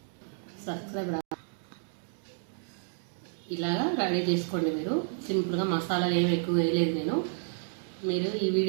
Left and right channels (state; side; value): silent; left; digital silence